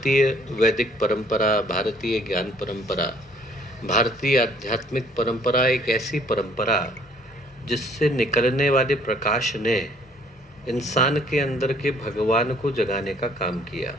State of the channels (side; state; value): both; normal; correlation 0.59